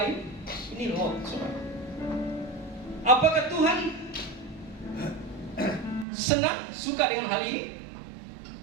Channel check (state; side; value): drops out; left; at 6.1 s